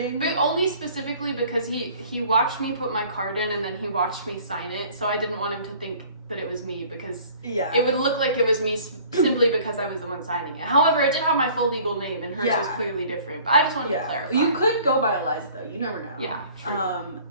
But only specifically because he watched me put my card in, and then he watched me sign it, so I didn't want him to think that it was me, because it would look like it was me simply because I was the one signing it. However, it did have my full legal name, and hers was clearly different. But I just wanted to clarify. You could go by Eliza, though. You never know. Yeah, true.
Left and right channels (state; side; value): inverted; both; correlation -0.51